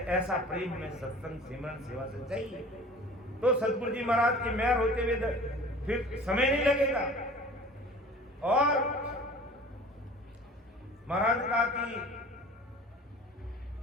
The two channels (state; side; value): normal; both; correlation 0.44